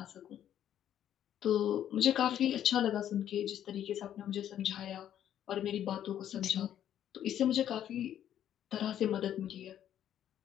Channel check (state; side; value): quieter; right; 10.6 dB